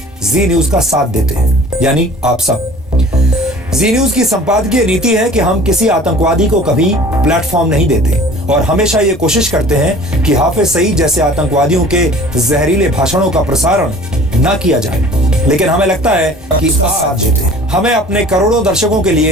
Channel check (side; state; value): both; normal; correlation 0.47